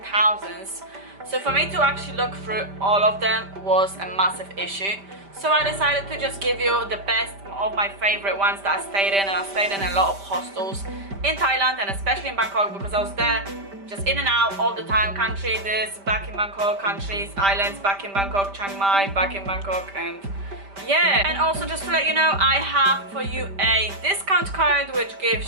thousands. So for me to actually look through all of them was a massive issue. So I decided to just give you the best of my favorite ones that I stayed in, and I stayed in a lot of hostels in Thailand and especially in Bangkok because I was there just in and out all the time. Country this, back in Bangkok, countries, islands, back in Bangkok, Chiang Mai, back in Bangkok, and yeah. And also just to let you know, I have for you a discount code which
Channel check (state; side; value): late; left; 5.1 ms